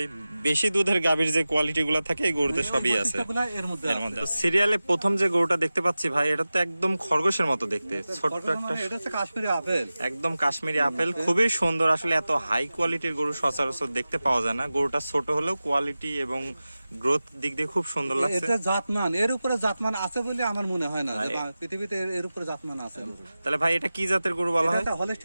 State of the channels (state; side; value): inverted; both; correlation -0.96